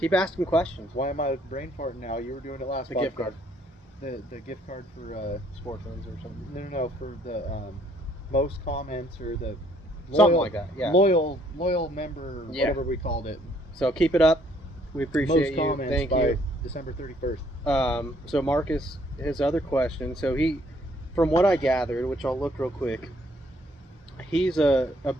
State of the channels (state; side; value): normal; both; correlation 0.65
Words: asking questions. Why am I brain farting now? You were doing it last. The gift card. The gift card for Sportsman's or something. no for the most comments or the Something like that, yeah. loyal member, Yeah. whatever we called it. So keep it up. We appreciate Most you. comments Thank by you. December 31st. So Marcus, his other question. So he, from what I gathered, which I'll look real quick, he's a